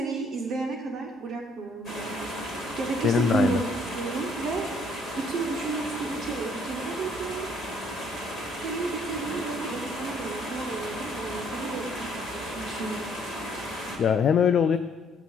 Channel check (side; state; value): both; normal; correlation 0.64